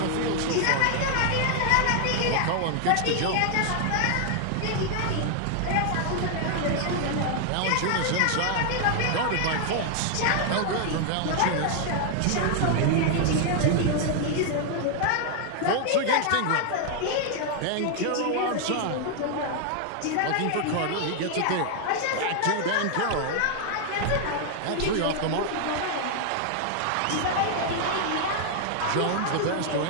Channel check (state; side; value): different; both; correlation 0.00